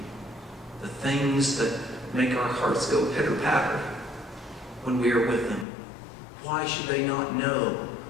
The things that make our hearts go pitter-patter when we are with them. Why should they not know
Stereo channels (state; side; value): drops out; right; at 5.7 s